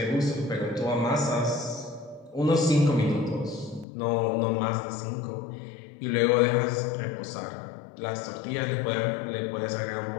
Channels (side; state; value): right; drops out; at 3.9 s